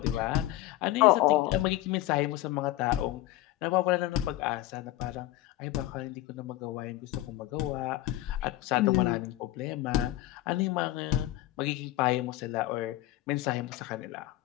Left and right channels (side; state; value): right; quieter; 15.7 dB